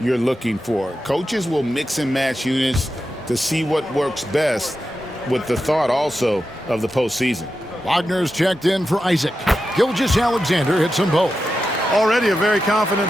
you're looking for. Coaches will mix and match units to see what works best, with the thought also of the postseason. Wagner's checked in for Isaac. Gilgeous-Alexander hits them both. Already a very confident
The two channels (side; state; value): both; normal; correlation 0.90